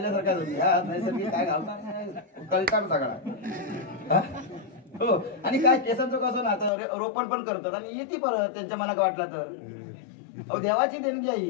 नैसर्गिक काय घालणार कळकार सगळा हो. आणि काय केसांचं कसं ना आता रोपण पण करतात आणि येते परत त्यांच्या मनात वाटला तर, अहो देवाची देणगी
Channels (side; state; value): right; drops out; at 6.7 s